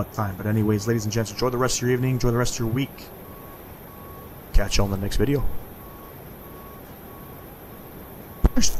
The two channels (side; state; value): both; identical; correlation 1.00